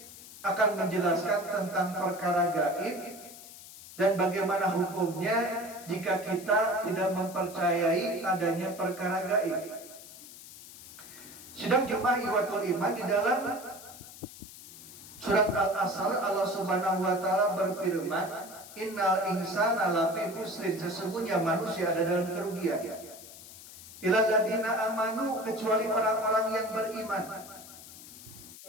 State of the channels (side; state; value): left; noise; hiss, 16 dB below the sound